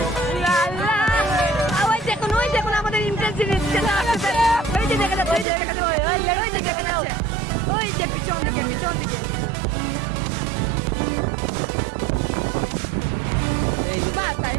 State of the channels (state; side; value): drops out; left; at 5.5 s